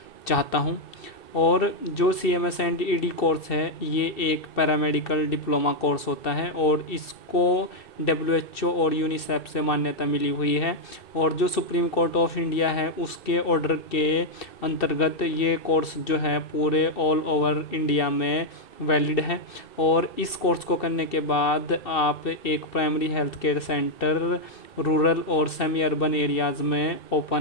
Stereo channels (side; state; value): right; late; 2.6 ms